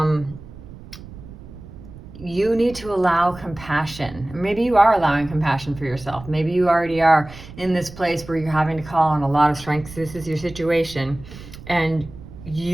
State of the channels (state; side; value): noise; right; rumble, 16 dB below the sound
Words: You need to allow compassion. Maybe you are allowing compassion for yourself. Maybe you already are in this place where you're having to call on a lot of strength. This is your situation, and